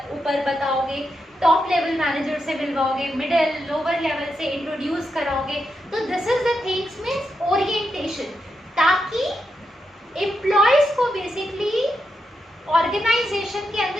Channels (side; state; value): both; normal; correlation 0.85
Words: ऊपर बताओगे, टॉप लेवल मैनेजर से मिलवाओगे, मिडिल लोअर लेवल से इंट्रोड्यूस कराओगे। तो this is the things means orientation, ताकि एम्प्लॉयज को बेसिकली ऑर्गेनाइजेशन के